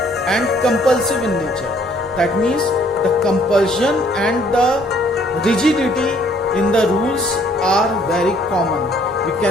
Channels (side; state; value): both; normal; correlation 0.62